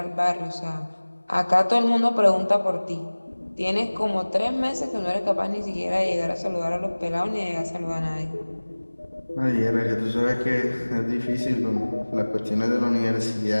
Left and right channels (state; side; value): inverted; both; correlation -1.00